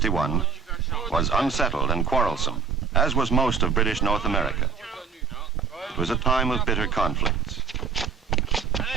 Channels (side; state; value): left; quieter; 5.7 dB